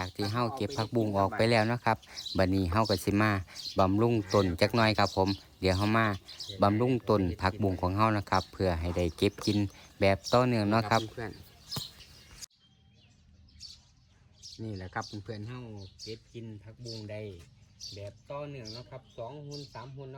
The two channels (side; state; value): both; identical; correlation 1.00